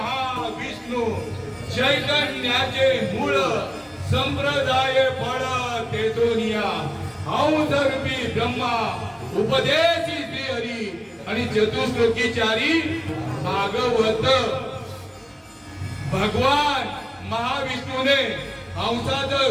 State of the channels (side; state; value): both; identical; correlation 1.00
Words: चैतन्याचे मूळ संप्रदाय फळ तेजोनिया औदर्भी ब्रह्मा उपदेशी श्री हरी आणि चतुश्लोकीचारी भागवत. भगवान महाविष्णूने